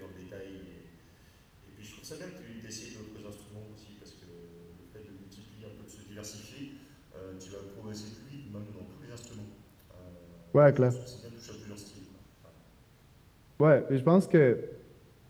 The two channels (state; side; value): identical; both; correlation 1.00